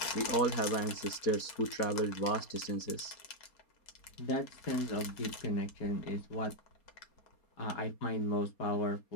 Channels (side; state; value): right; late; 4.3 ms